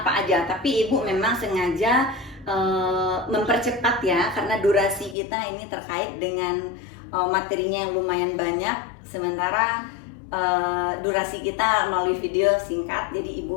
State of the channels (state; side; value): drops out; right; at 5.2 s